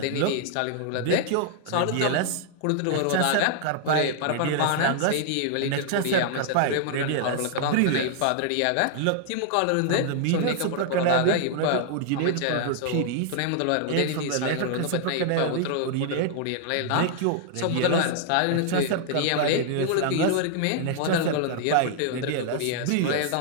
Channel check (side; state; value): both; different; correlation -0.01